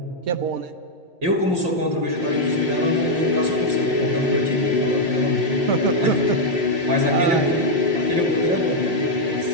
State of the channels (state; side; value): late; left; 5.7 ms